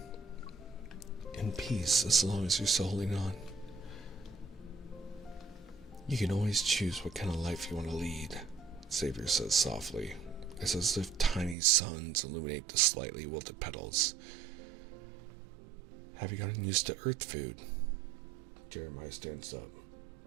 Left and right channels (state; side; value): drops out; left; at 11.6 s